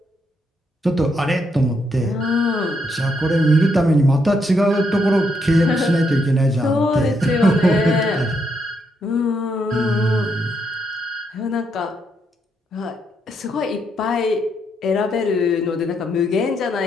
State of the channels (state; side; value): normal; both; correlation 0.77